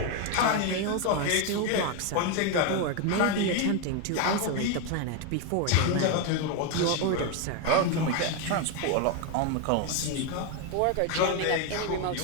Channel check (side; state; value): both; different; correlation 0.01